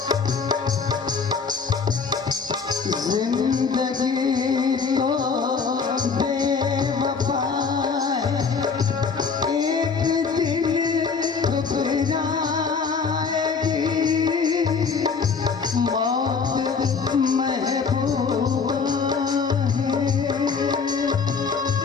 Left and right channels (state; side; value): quieter; right; 5.4 dB